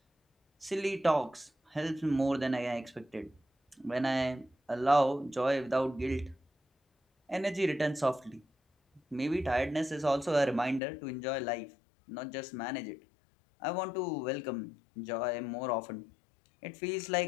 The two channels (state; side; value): drops out; right; at 10.8 s